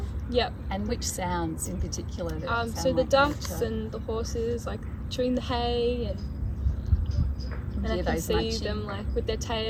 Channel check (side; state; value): both; identical; correlation 1.00